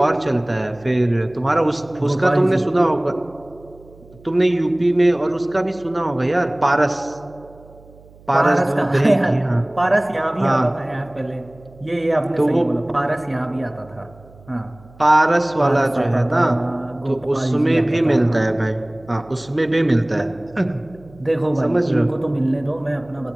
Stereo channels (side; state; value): right; noise; hum, 25 dB below the sound